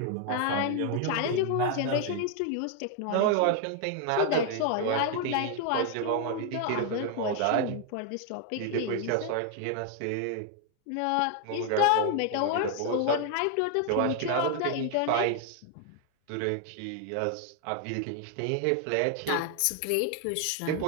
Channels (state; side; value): different; both; correlation 0.00